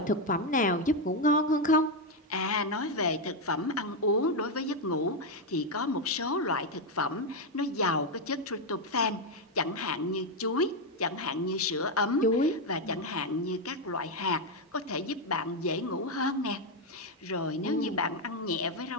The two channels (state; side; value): normal; both; correlation 0.04